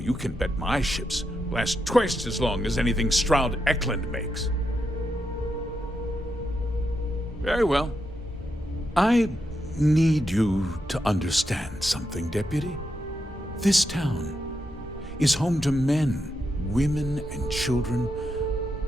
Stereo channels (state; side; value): normal; both; correlation 0.84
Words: can bet my ships last twice as long as anything Stroud Eklund makes. Very well. I need you to understand something, Deputy. This town is home to men, women, and children